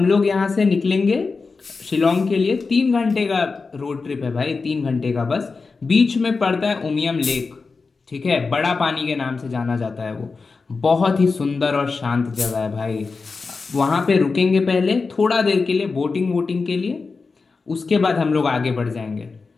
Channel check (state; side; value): quieter; right; 4.4 dB